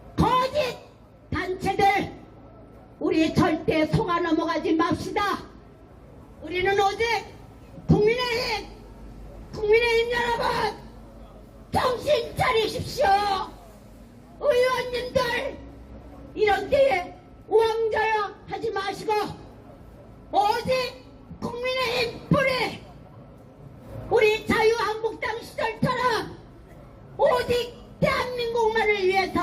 거짓 단체들 우리 절대 속아 넘어가지 맙시다. 우리는 오직 국민의힘 여러분 정신 차리십시오. 의원님들 이런 때에 우왕좌왕 하지 마시고 오직 국민의힘 뿌리 우리 자유한국당 시절처럼 오직 대한민국만을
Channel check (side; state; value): both; identical; correlation 1.00